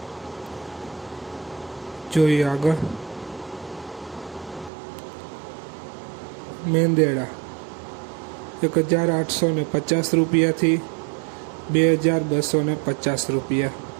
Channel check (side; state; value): left; drops out; at 4.7 s